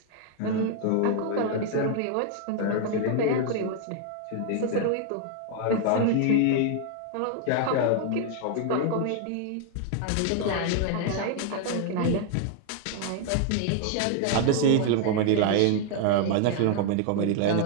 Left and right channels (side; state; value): both; different; correlation 0.00